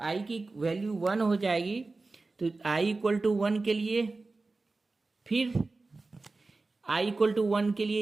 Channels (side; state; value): left; quieter; 3.5 dB